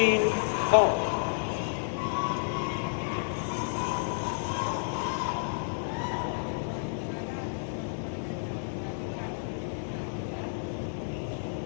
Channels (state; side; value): silent; right; digital silence